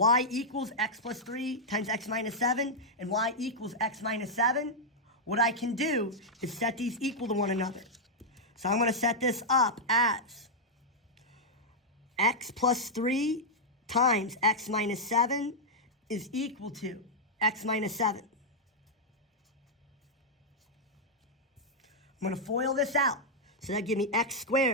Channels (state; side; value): normal; both; correlation -0.04